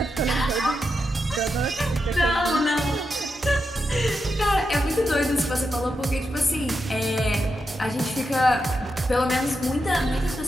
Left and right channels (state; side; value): normal; both; correlation 0.86